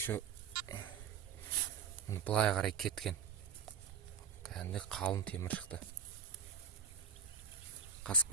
былай қарай кеткен. Кәдімгі қалың темір шықты.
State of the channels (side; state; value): left; quieter; 6.8 dB